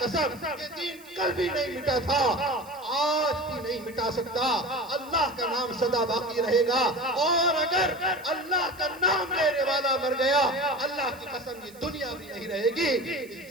یہ دین کل بھی نہیں مٹا تھا, آج بھی نہیں مٹا سکتا. اللہ کا نام سدا باقی رہے گا, اور اگر اللہ کا نام لینے والا مر گیا, اللہ کی قسم یہ دنیا بھی نہیں رہے گی. اس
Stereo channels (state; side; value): noise; right; hiss, 23 dB below the sound